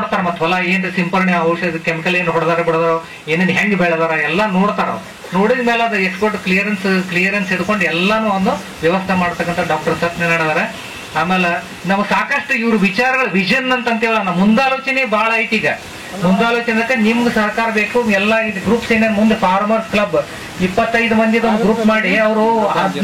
ಮತ್ ಹೊಲ ಏನ್ರಿ ಸಿಂಪರಣೆ ಔಷಧ ಕೆಮಿಕಲ್ ಏನ್ ಹೊಡೆದಾರ ಬಿಡದಾರ, ಏನೇನ್ ಹೆಂಗ್ ಬೆಳೆದಾರ ಎಲ್ಲ ನೋಡ್ತಾರ. ನೋಡಿದ ಮೇಲೆ ಅದು ಎಕ್ಸ್ಪೋರ್ಟ್ ಕ್ಲಿಯರೆನ್ಸ್ ಹಿಡ್ಕೊಂಡು ಎಲ್ಲಾನು ಒಂದು ವ್ಯವಸ್ಥೆ ಮಾಡ್ತಕ್ಕಂಥ ಡಾಕ್ಟರ್ ಸತ್ಯನಾರಾಯಣ ಅವರ. ಆಮೇಲೆ ನಾವು ಸಾಕಷ್ಟು ಇವ್ರ ವಿಚಾರಗಳ ವಿಷನ್ ಅಂತೇಳ ನಮ್ಮ ಮುಂದಾಲೋಚನೆ ಬಹಳ ಐತಿ. ಈಗ ಮುಂದಾಲೋಚನೆ ನಿಮ್ಗೆ ಸಹಕಾರ ಬೇಕು. ಎಲ್ಲ ಇದು ಗ್ರೂಪ್ಸ್ ಏನೇನು ಮುಂದೆ ಫಾರ್ಮರ್ಸ್ ಕ್ಲಬ್ 25 ಮಂದಿ ಒಂದು ಗ್ರೂಪ್ ಮಾಡಿ ಅವರು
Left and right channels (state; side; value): identical; both; correlation 1.00